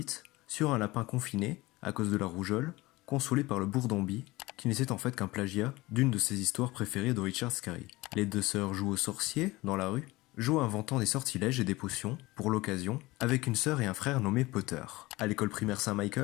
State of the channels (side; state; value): right; quieter; 20.5 dB